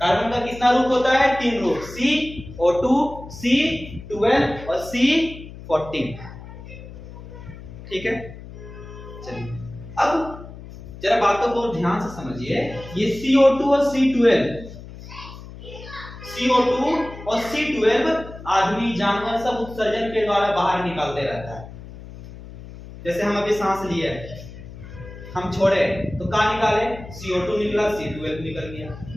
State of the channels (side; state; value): left; noise; hum, 15 dB below the sound